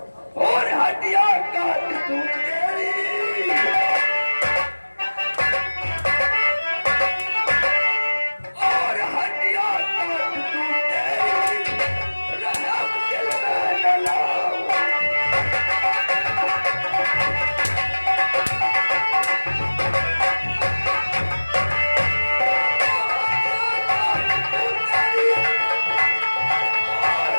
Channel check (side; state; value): both; inverted; correlation -1.00